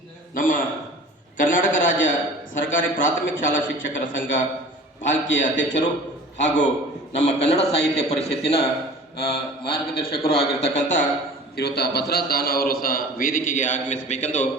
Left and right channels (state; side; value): normal; both; correlation 0.43